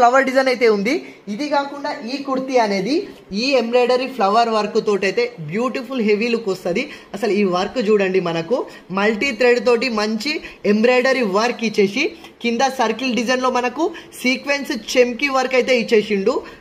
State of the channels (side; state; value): both; identical; correlation 1.00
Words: డిజైన్ అయితే ఉంది. ఇది కాకుండా ఈ కుర్తీ అనేది ఈ ఎంబ్రాయిడరీ ఫ్లవర్ వర్క్ తోటి అయితే బ్యూటిఫుల్ హెవీ లుక్ వస్తుంది. అసలు ఈ వర్క్ చూడండి, మనకు మల్టీ థ్రెడ్ తోటి మంచి ఎంబ్రాయిడరీ వర్క్ ఇచ్చేసి కింద సర్కిల్ డిజైన్ లో మనకు సీక్వెన్స్ చెమ్కి వర్క్ అయితే ఇచ్చేసిండు.